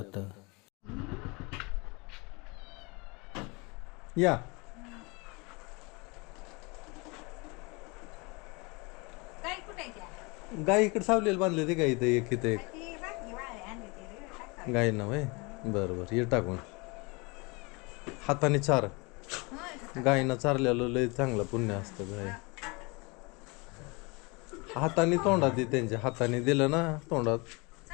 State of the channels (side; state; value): right; quieter; 27.9 dB